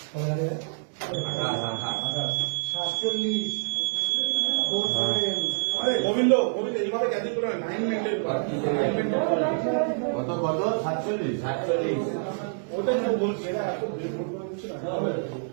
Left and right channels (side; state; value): left; silent; digital silence